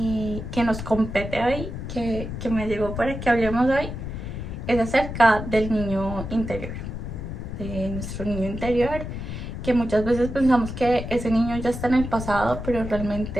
nos compete hoy, que me llegó para que hablemos hoy, es acerca del niño interior, de nuestro niño interior, que muchas veces pensamos que ese niño ya está en el pasado, pero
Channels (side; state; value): left; noise; rumble, 7 dB below the sound